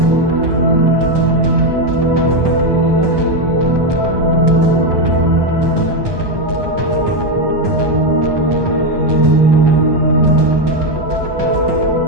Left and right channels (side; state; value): left; late; 1.2 ms